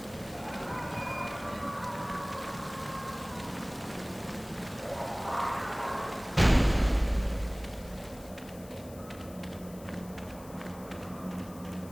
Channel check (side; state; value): left; noise; hiss, 20 dB below the sound